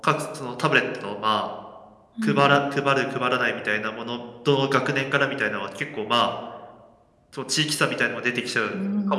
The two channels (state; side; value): identical; both; correlation 1.00